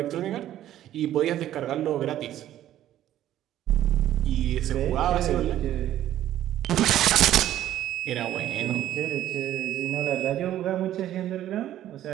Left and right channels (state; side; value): quieter; left; 12.5 dB